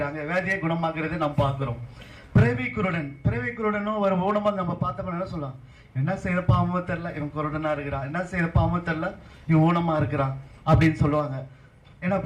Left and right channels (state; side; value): identical; both; correlation 1.00